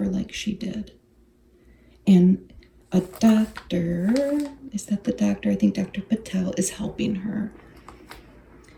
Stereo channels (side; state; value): both; identical; correlation 1.00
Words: like she did. And a doctor, is that the doctor? I think Dr. Patel is helping her.